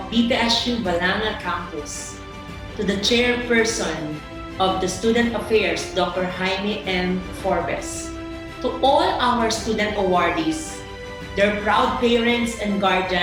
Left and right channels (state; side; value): identical; both; correlation 1.00